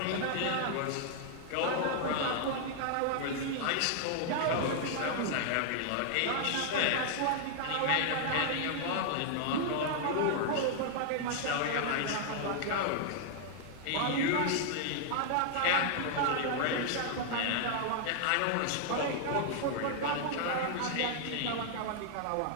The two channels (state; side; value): different; both; correlation -0.01